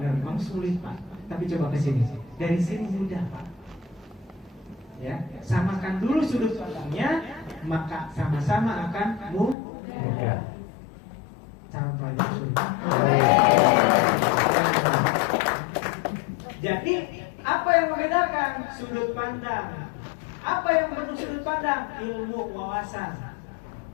memang sulit, Pak. Tapi coba ke sini. Dari sini mudah, Pak. Ya, samakan dulu sudut pandangnya, maka sama-sama akan mudah. Cara pelajaran sulit. Jadi, apa yang membedakan sudut pandang? Apa yang bentuk sudut pandang? Ilmu wawasan.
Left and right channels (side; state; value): right; drops out; at 9.6 s